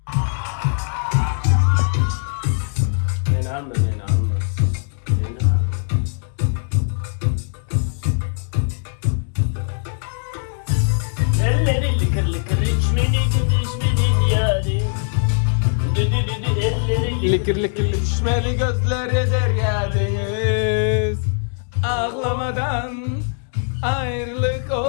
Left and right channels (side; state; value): right; silent; digital silence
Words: Beni alma. Beni alma. Elleri lıkır içmedi yarim. Likir düşmeli gözleri derya deniz. Ağlamadan ayrılık